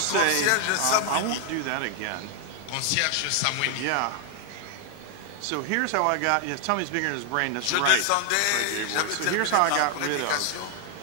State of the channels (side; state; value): both; different; correlation 0.00